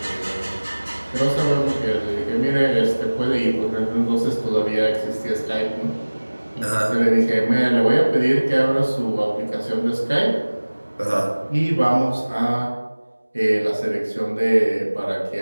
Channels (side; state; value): both; inverted; correlation -1.00